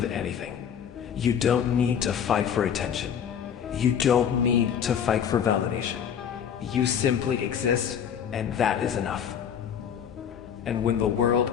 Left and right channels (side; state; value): right; quieter; 8.3 dB